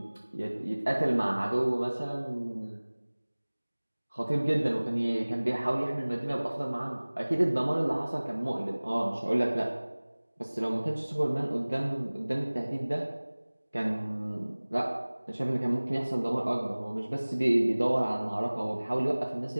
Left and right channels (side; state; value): both; inverted; correlation -1.00